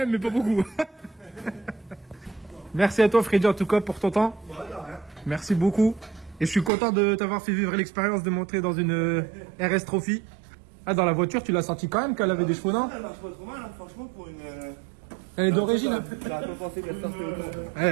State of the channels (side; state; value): left; drops out; at 6.7 s